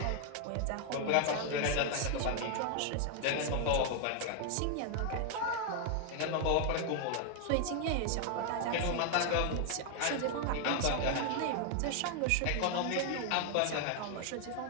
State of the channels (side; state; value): both; different; correlation 0.00